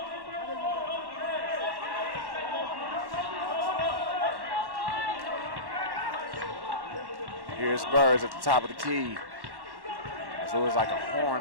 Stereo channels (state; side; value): late; left; 1.1 ms